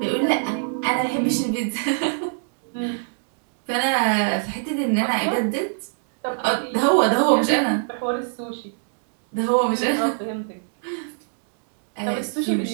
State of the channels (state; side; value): silent; left; digital silence